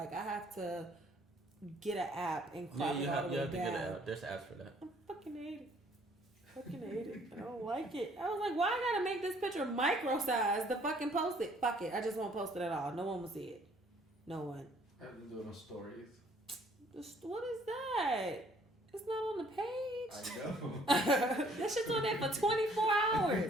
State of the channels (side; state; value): both; normal; correlation 0.61